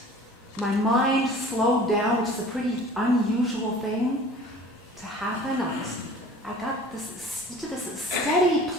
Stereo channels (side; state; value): both; normal; correlation 0.45